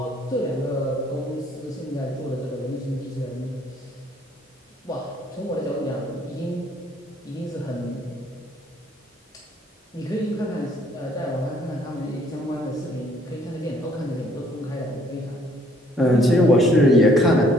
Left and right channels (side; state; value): both; normal; correlation 0.63